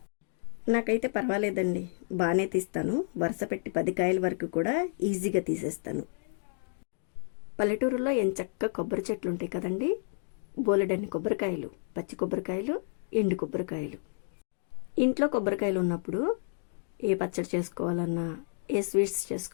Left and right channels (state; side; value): silent; right; digital silence